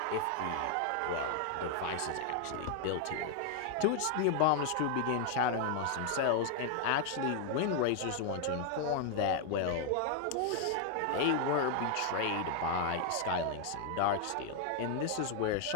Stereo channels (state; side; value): different; both; correlation 0.00